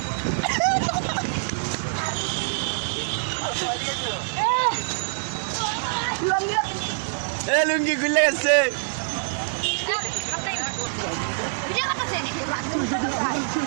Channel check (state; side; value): silent; left; 62 dB below the other